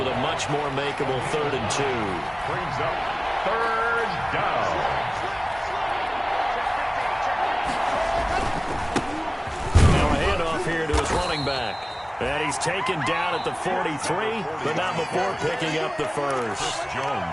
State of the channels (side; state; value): both; identical; correlation 1.00